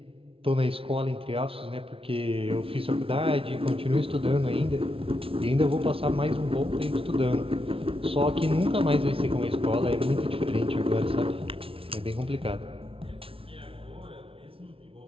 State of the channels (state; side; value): late; left; 0.26 ms